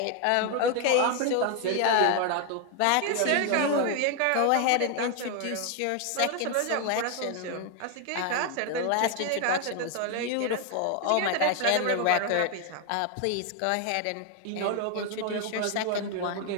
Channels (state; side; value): different; both; correlation 0.01